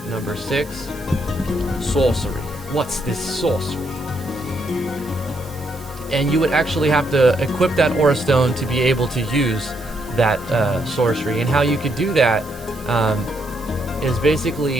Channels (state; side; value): noise; right; hiss, 22 dB below the sound